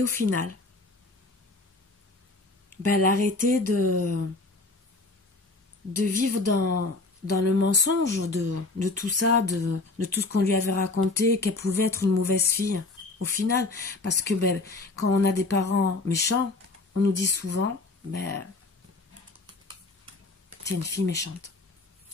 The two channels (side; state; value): right; quieter; 3.3 dB